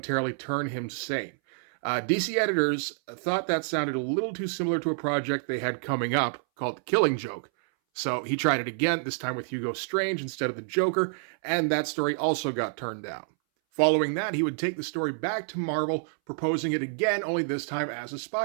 turn him sane. DC editors thought that sounded a little too similar to a project they had coming up called The Killing Joke. So he tried it again, this time with Hugo Strange instead of the Joker, and that story also got turned down. Following that, he would take the story back to Marvel, proposing it again, only this time as a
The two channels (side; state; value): left; silent; 59 dB below the other